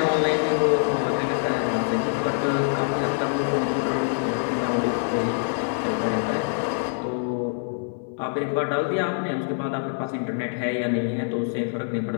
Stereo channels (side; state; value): right; silent; 57 dB below the other